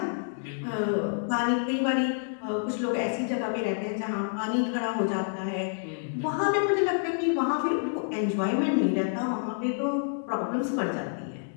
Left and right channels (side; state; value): right; silent; digital silence